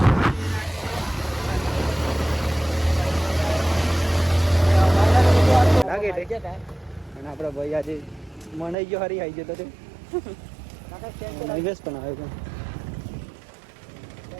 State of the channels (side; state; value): left; drops out; at 8.8 s